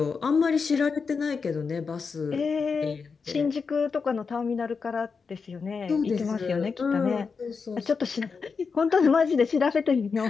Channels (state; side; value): quieter; right; 5.2 dB